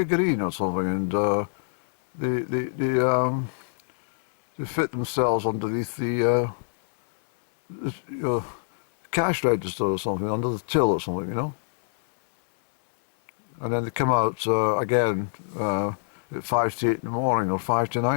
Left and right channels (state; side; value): silent; right; digital silence